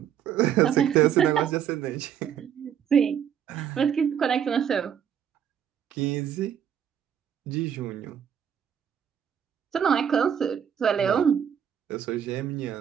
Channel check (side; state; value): left; quieter; 8.8 dB